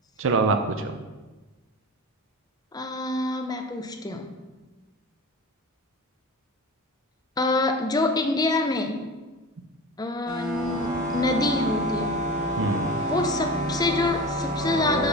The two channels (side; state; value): both; normal; correlation 0.31